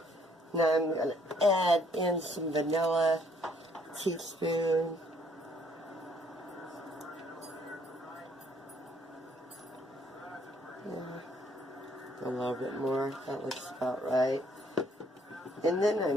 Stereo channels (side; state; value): both; normal; correlation 0.65